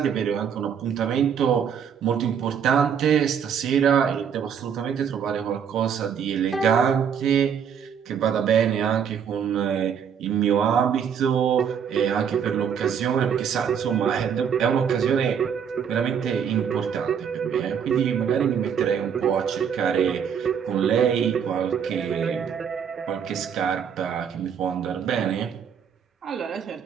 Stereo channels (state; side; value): quieter; left; 7.7 dB